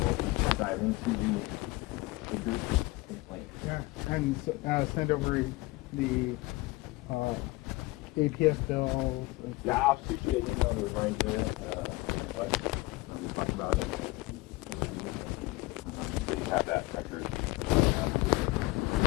dive into the complaint. Yeah, and send over the APS bills. Yeah, I'll shoot you an email to remind you. We talked about it. So you have that record.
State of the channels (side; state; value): right; quieter; 21.8 dB